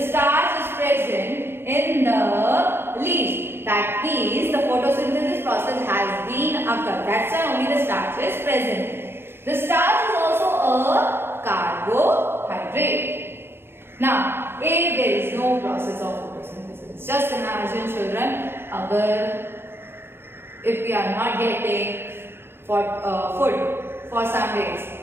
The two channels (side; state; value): left; late; 0.11 ms